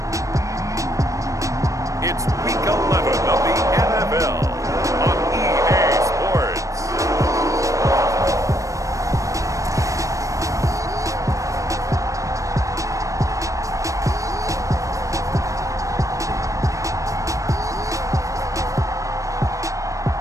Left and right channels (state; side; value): late; left; 0.16 ms